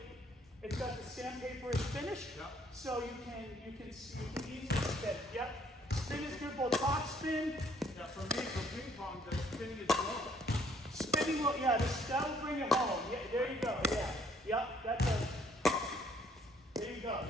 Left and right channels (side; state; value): both; normal; correlation 0.64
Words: It's got the sandpaper is finished, so you can easily spin. Yep. Spin is good, both top spin. Yeah, for me, for ping pong, the spinning is low. Spinning will, that will bring it home. Yeah, there you go. Yeah. Yep. There you go.